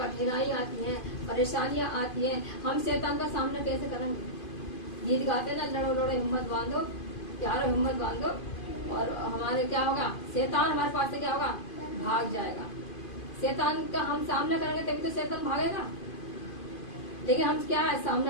आती है, परेशानियां आती हैं, हम शैतान का सामना कैसे करेंगे? गीत गाते ना, लड़ो लड़ो हिम्मत बांधो, प्यारो हिम्मत बांधो, और हमारे क्या होगा? शैतान हमारे पास से क्या होगा? भाग जाएगा। शैतान का हम सामना करेंगे तभी तो शैतान भागेगा। लेकिन हम क्या है?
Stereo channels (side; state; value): right; late; 2.5 ms